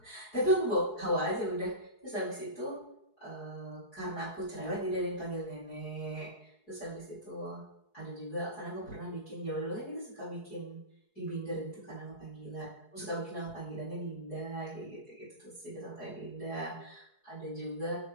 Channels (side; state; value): right; late; 4.7 ms